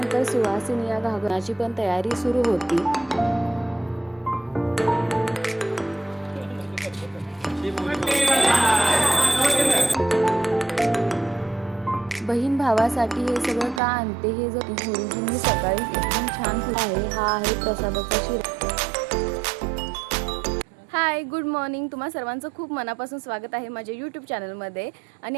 सुहासिनी या घागराची पण तयारी सुरू होती। बहीण भावासाठी हे सगळं का आणते हे जर गुरुजींनी सकाळी एकदम छान आहे। हा आहे प्रसादाचा शिरा। हाय गुड मॉर्निंग, तुम्हा सर्वांचं खूप मनापासून स्वागत आहे माझ्या यूट्यूब चॅनलमध्ये।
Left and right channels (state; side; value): drops out; left; at 13.8 s